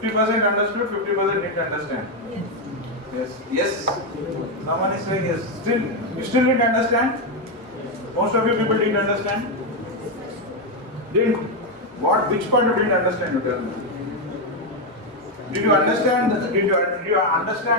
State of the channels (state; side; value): normal; both; correlation 0.05